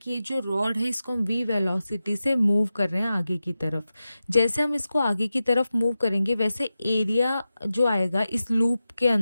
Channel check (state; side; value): inverted; both; correlation -0.93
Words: ये जो रॉड है इसको हम v वेलोसिटी से मूव कर रहे हैं आगे की तरफ. जैसे हम इसको आगे की तरफ मूव करेंगे वैसे एरिया जो आएगा इस लूप के